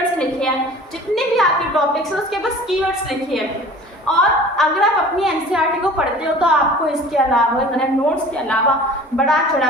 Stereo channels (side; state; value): both; normal; correlation 0.44